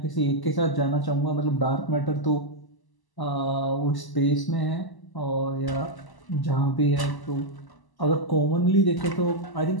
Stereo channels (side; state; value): right; late; 1.0 ms